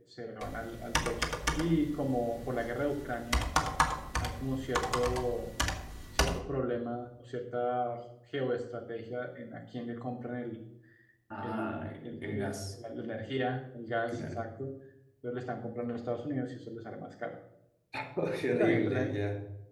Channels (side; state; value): both; identical; correlation 1.00